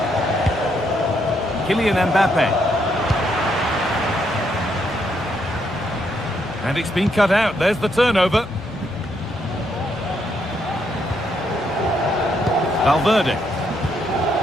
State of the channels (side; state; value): both; normal; correlation 0.75